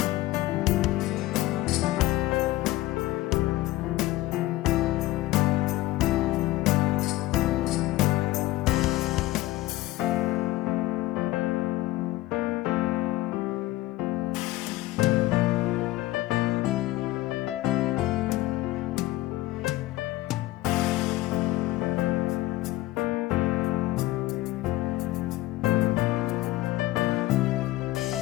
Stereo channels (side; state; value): right; quieter; 17.4 dB